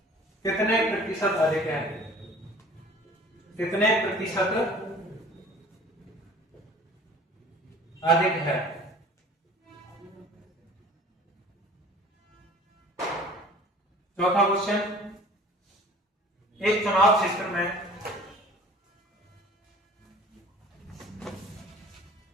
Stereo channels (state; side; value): normal; both; correlation 0.47